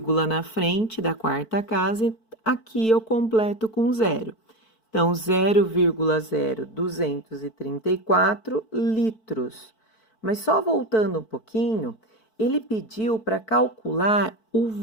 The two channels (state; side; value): late; right; 4.5 ms